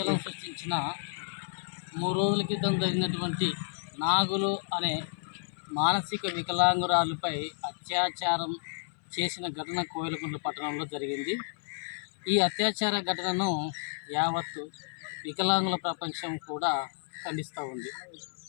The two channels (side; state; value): right; silent; 57 dB below the other